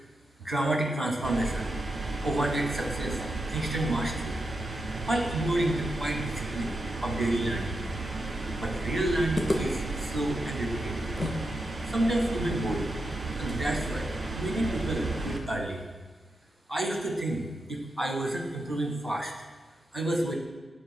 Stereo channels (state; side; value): normal; both; correlation 0.86